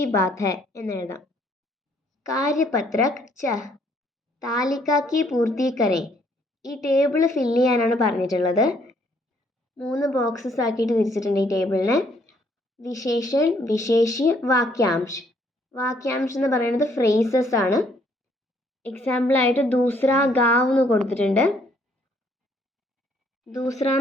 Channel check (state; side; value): normal; both; correlation 0.67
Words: बात है എന്ന് എഴുതാം. കാര്യപത്രക് ച. താലിക की पूर्ति करें. ഈ ടേബിൾ ഫില്ല് ചെയ്യാനാണ് പറഞ്ഞിട്ടുള്ളത്. 3 ബോക്സസ് ആക്കിയിട്ട് തിരിച്ചിട്ടുണ്ട് ഈ ടേബിളിനെ. വിശേഷൺ, വിശേഷ്യ, വാക്യാംശ്. വാക്യാംശ് എന്ന് പറയുന്നത് ഫ്രേസസ് ആണ്. എക്സാമ്പിളായിട്ട് ദൂസ്ര ഗാവ് എന്ന് കൊടുത്തിട്ടുണ്ട്. ദൂസ്ര